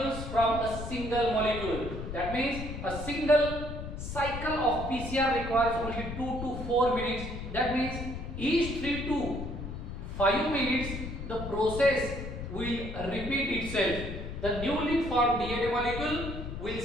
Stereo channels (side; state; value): left; noise; rumble, 7 dB below the sound